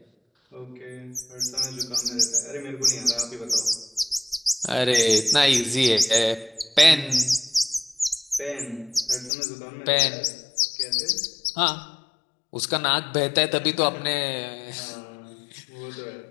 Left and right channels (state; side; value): drops out; right; at 9.3 s